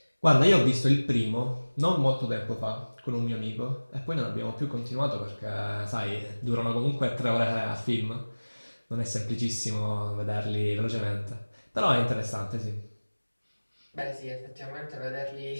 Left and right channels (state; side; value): inverted; both; correlation -1.00